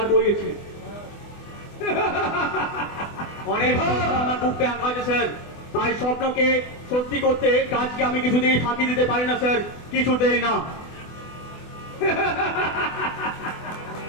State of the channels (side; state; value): right; late; 24 ms